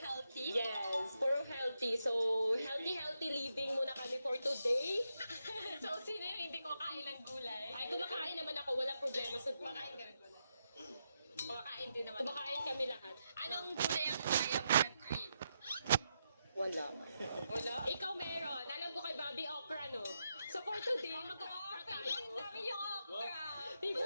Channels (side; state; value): both; inverted; correlation -0.84